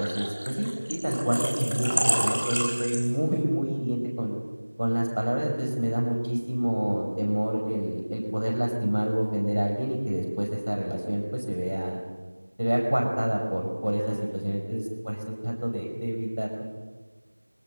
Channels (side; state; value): both; inverted; correlation -1.00